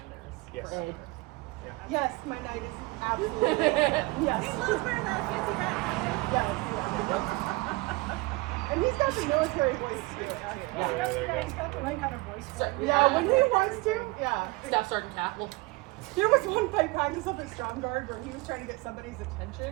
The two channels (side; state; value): left; quieter; 23.7 dB